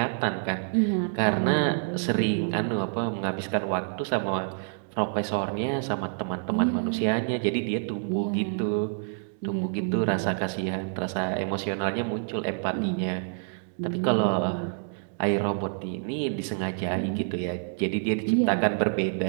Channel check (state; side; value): silent; left; digital silence